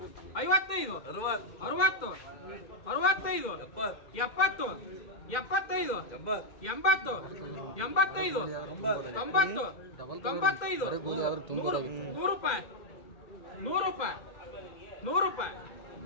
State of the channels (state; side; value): late; right; 2.1 ms